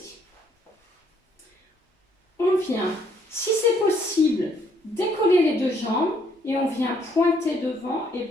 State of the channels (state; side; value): normal; both; correlation 0.68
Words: On vient, si c'est possible, décoller les deux jambes et on vient pointer devant et